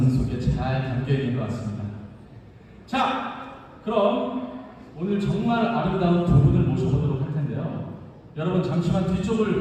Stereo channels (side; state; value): both; identical; correlation 1.00